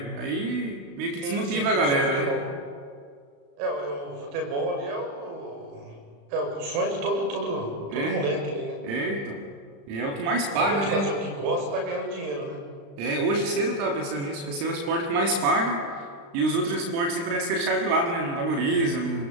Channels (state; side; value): late; left; 35 ms